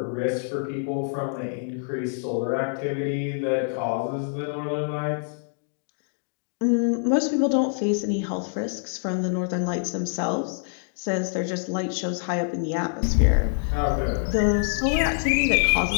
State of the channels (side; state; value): right; silent; digital silence